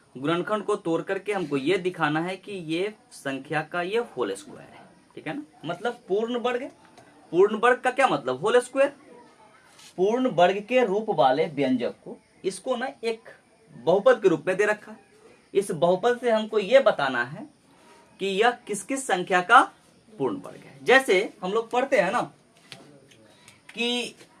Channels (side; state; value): both; identical; correlation 1.00